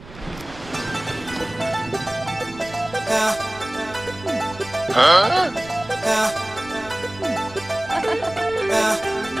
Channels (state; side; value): noise; right; rumble, 18 dB below the sound